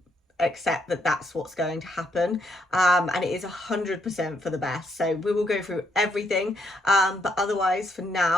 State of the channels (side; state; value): both; normal; correlation 0.74